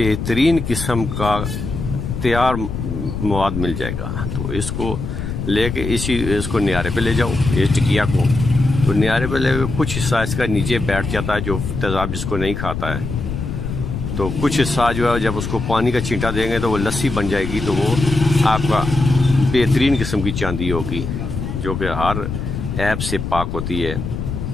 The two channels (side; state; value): left; noise; rumble, 5 dB below the sound